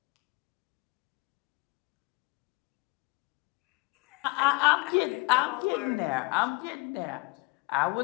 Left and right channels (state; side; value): quieter; right; 26.3 dB